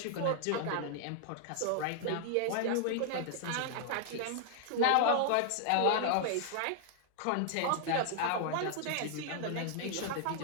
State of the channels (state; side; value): different; both; correlation 0.00